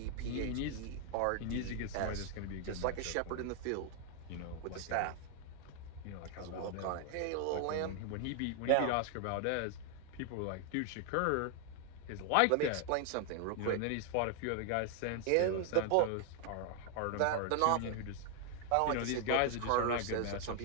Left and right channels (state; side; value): different; both; correlation 0.00